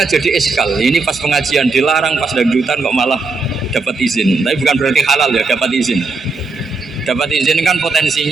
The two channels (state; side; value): quieter; left; 3.9 dB